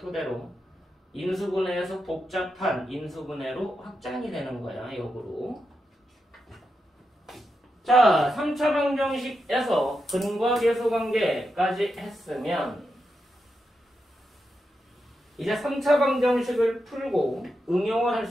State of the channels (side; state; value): both; normal; correlation 0.87